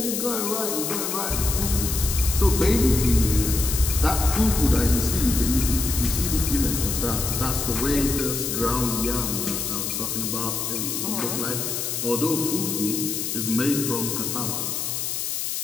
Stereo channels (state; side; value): noise; left; hiss, 2 dB below the sound